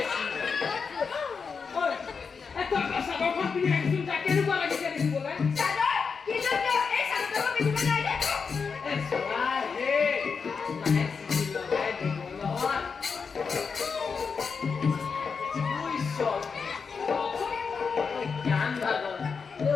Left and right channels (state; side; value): quieter; right; 5.5 dB